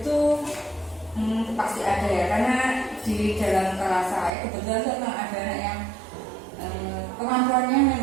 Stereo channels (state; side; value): drops out; left; at 4.3 s